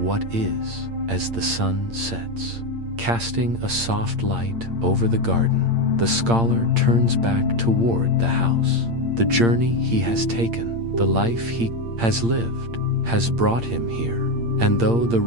is as the sun sets. Casting a soft light over the garden, the scholar turns back toward the house. The journey he has taken, the life he has lived, has brought him here. And though the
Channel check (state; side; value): late; left; 8.7 ms